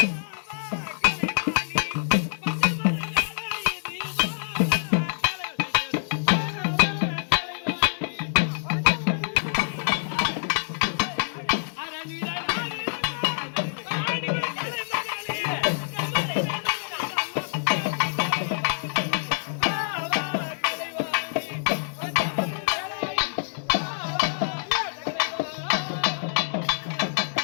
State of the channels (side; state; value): right; silent; 58 dB below the other